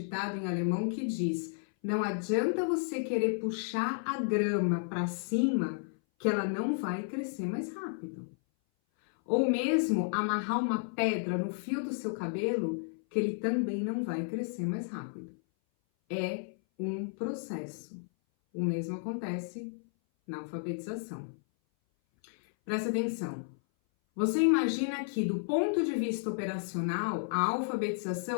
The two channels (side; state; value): right; silent; 56 dB below the other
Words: em alemão que diz: não adianta você querer puxar a grama para cima, que ela não vai crescer mais rápido. Ou mesmo amarrar uma pedra no fio do seu cabelo, que ele também não vai crescer mais rápido. É um processo. O mesmo acontece na alfabetização. Presta atenção. Você imagina que, do ponto de vista operacional, a